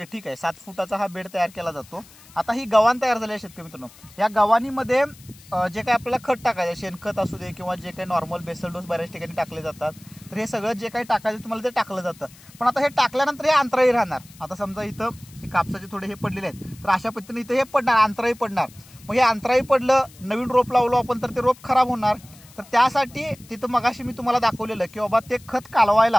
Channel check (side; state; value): left; noise; hiss, 23 dB below the sound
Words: ठीक आहे. 7 फुटाचा हा बेड तयार केला जातो. आता ही गव्हाण तयार झाली आहे शेतकरी मित्रांनो. या गव्हाणीमध्ये जे काही आपल्याला खत टाकायचं, शेणखत असू दे किंवा जे काही नॉर्मल बेसल डोस बऱ्याच ठिकाणी टाकले जातात, तर हे सगळं जे काही टाकायचं तुम्हाला ते टाकलं जातं. पण आता हे टाकल्यानंतर हे अंतराळी राहणार. आता समजा इथं हे कापसाचे थोडे हे पडलेले आहेत, तर अशा पद्धतीने इथं हे पडणार, अंतराळी पडणार. मग हे अंतराळी पडलं, नवीन रोप लावलो आपण तर ते रोप खराब होणार. तर त्यासाठी तिथं मगाशी मी तुम्हाला दाखवलेलं की बाबा ते खत